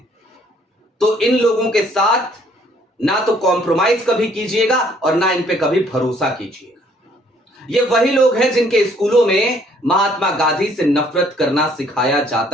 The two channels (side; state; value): both; normal; correlation 0.62